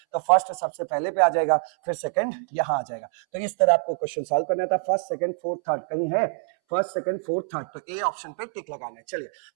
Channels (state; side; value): silent; left; 61 dB below the other